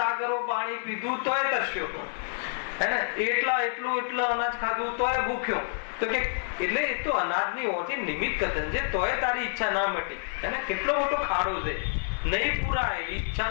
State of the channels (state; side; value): silent; right; digital silence